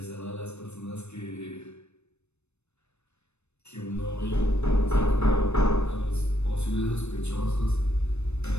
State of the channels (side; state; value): right; late; 0.81 ms